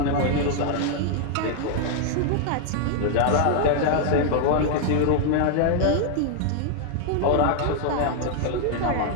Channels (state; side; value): different; both; correlation 0.00